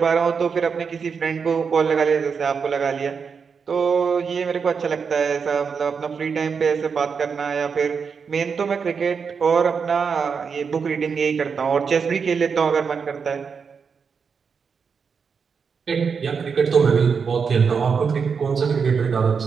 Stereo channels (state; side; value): quieter; left; 5.9 dB